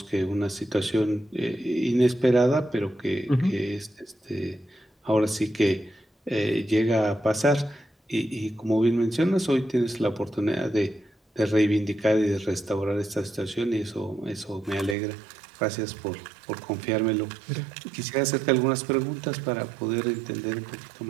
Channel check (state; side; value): drops out; left; at 15.0 s